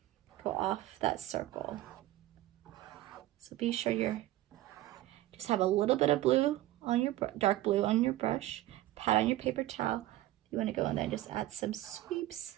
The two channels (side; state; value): left; quieter; 15.7 dB